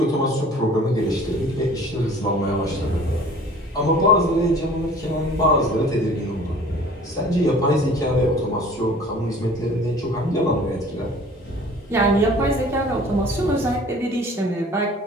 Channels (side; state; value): both; normal; correlation 0.48